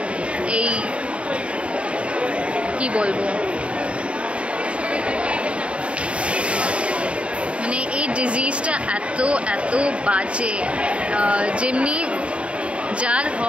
এই কি বলবো, মানে এই ডিজিজটা এত এত বাজে, যেমনি যার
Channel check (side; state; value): left; late; 0.060 ms